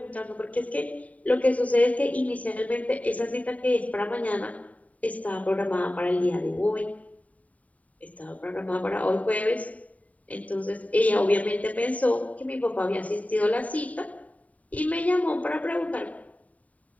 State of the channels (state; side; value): late; right; 0.070 ms